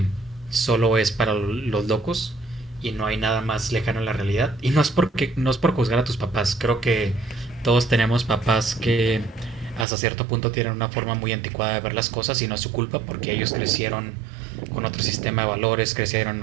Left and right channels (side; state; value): left; drops out; at 9.9 s